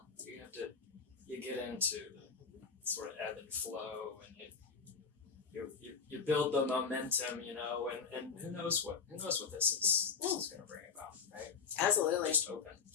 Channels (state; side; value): quieter; right; 5.7 dB